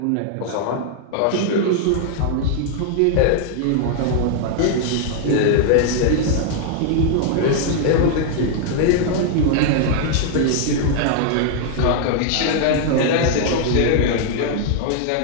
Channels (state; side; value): different; both; correlation 0.00